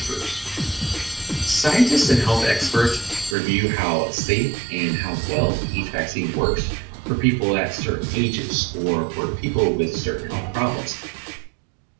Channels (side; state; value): left; drops out; at 3.4 s